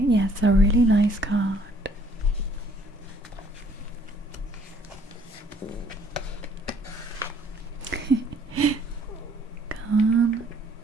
a really nice card. Come,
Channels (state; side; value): normal; both; correlation 0.60